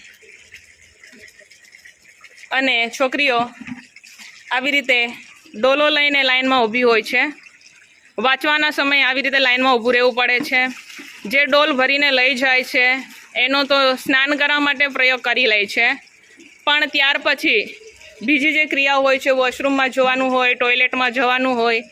અને છોકરીઓ આવી રીતે ડોલો લઈને લાઇનમાં ઊભી હોય છે. વાંચવાના સમયે આવી રીતે લાઇનમાં ઊભું રહેવું પડે છે. જે ડોલ ભરીને લઈ જાય છે એનો તો સ્નાન કરવા માટે પ્રયોગ કરી લે છે, પણ ત્યાર પછી બીજી જે ક્રિયાઓ હોય છે, વોશરૂમમાં જવાનું હોય, ટોયલેટમાં જવાનું હોય,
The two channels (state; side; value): identical; both; correlation 1.00